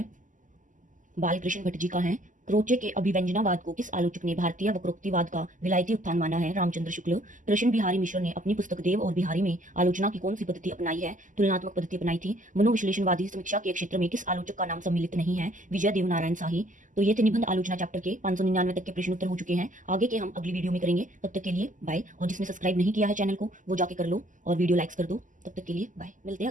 बालकृष्ण भट्ट जी का है। क्रोचे के अभिव्यंजनावाद को किस आलोचक ने भारतीय वक्रोक्तिवाद का विलायती उत्थान माना है? रामचंद्र शुक्ल। कृष्ण बिहारी मिश्र ने अपनी पुस्तक देव और बिहारी में आलोचना की कौन सी पद्धति अपनाई है? तुलनात्मक पद्धति अपनाई थी। मनोविश्लेषणवादी समीक्षा के क्षेत्र में किस आलोचक का नाम सम्मिलित नहीं है? विजय देवनारायण शाही। तो ये थे निबंध आलोचना चैप्टर के 599 तक के प्रश्न उत्तर हो चुके हैं। आगे के हम अगली वीडियो में करेंगे। तब तक के लिए बाय। और जिसने सब्सक्राइब नहीं किया है चैनल को वो जाके कर लो और वीडियो लाइक्स कर दो। तब तक के लिए बाय। मिलते हैं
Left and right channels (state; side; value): late; left; 0.37 ms